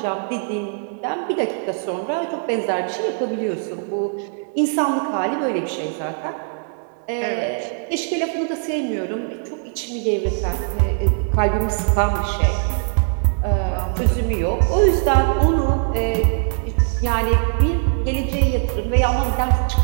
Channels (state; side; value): silent; left; 58 dB below the other